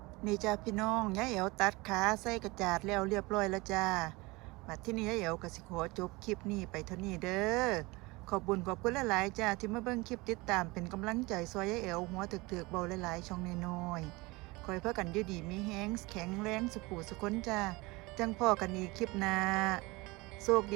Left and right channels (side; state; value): left; quieter; 23.4 dB